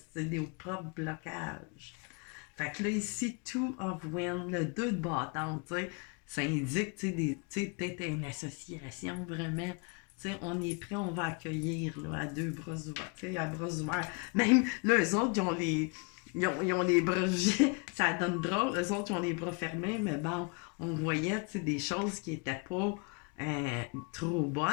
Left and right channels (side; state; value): right; quieter; 33.3 dB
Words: sais, des propres blocages. Fait que là, ici, two of wind, le 2 de bâton, tu sais, ça indique, tu sais, peut-être une association, vraiment. Tu sais, on est prêt, on va accueillir, là, à deux bras ouverts, tu sais, à bras ouverts. Même, là, eux autres, ils ont les bras, ça donne drôle, eux autres, ils ont les bras fermés, mais bon, on voyait, tu sais, des choses qui étaient pas trop